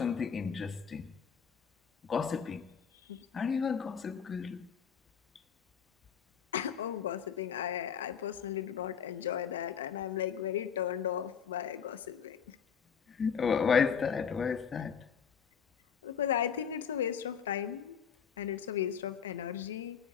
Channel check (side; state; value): right; quieter; 7.2 dB